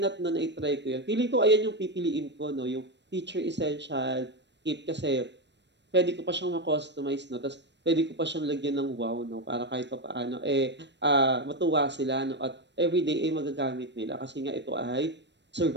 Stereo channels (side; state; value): left; late; 0.51 ms